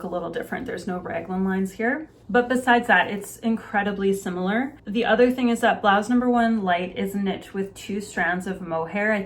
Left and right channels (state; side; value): identical; both; correlation 1.00